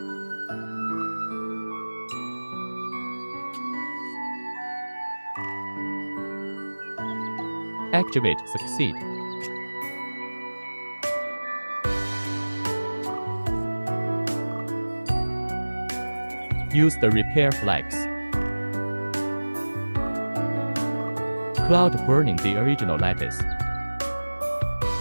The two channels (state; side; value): inverted; both; correlation -1.00